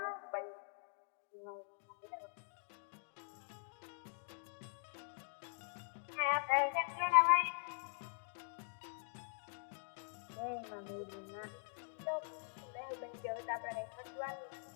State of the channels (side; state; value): right; silent; digital silence